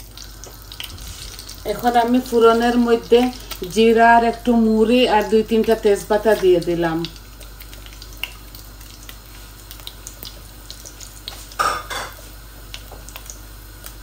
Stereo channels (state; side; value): identical; both; correlation 1.00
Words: এখন আমি ফোড়নের মধ্যে জিরা আর একটু মুড়ি আর 2-3টা তেজপাতা দিয়ে দিলাম।